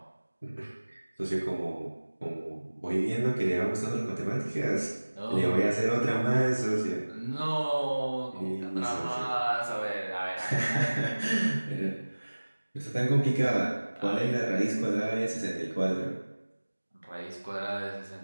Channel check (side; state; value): both; inverted; correlation -1.00